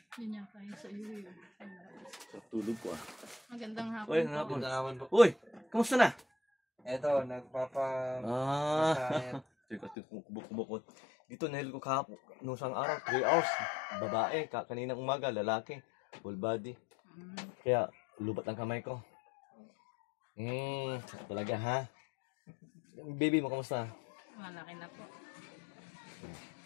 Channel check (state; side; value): drops out; right; at 10.0 s